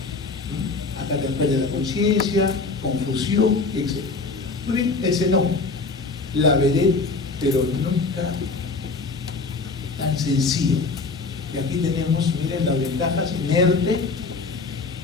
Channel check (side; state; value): right; quieter; 4.0 dB